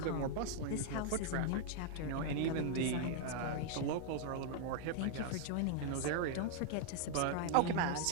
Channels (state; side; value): different; both; correlation -0.01